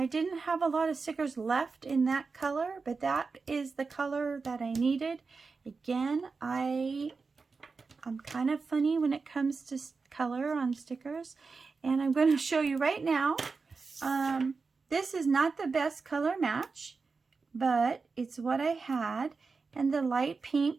didn't have a lot of stickers left in that color, but that is the color that I needed. Again, I'm kind of funny when it comes to color on stickers, and I'm going to show you right now. This is not the best color match, but it's what I had, and the light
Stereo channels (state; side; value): quieter; left; 4.5 dB